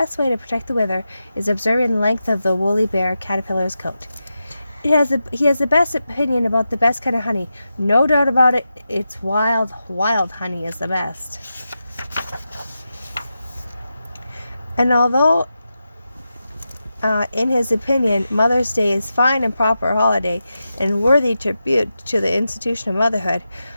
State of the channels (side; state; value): both; inverted; correlation -0.90